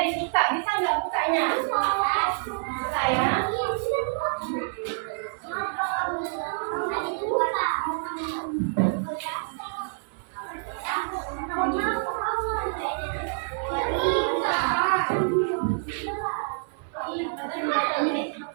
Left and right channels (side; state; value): left; silent; digital silence